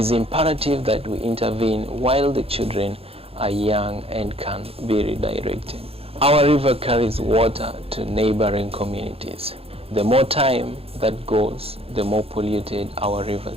imperative that we intervene while the children are young and can be redirected. Our river carries water to neighboring communities. The more time that goes, the more polluted our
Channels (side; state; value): left; late; 0.28 ms